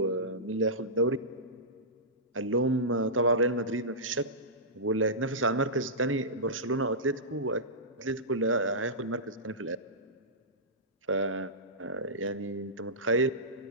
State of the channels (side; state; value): both; normal; correlation -0.16